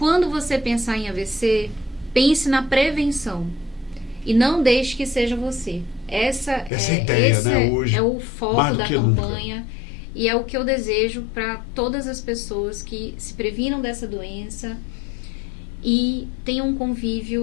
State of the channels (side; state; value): right; drops out; at 6.7 s